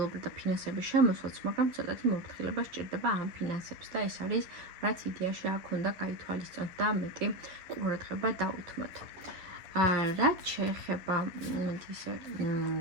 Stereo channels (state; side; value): late; left; 11 ms